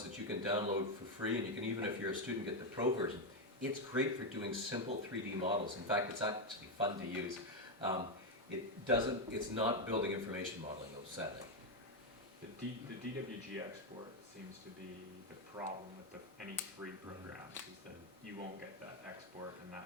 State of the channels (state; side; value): normal; both; correlation 0.06